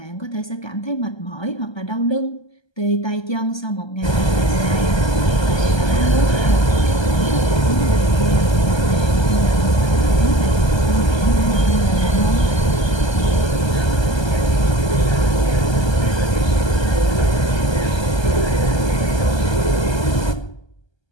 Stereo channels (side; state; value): right; late; 1.3 ms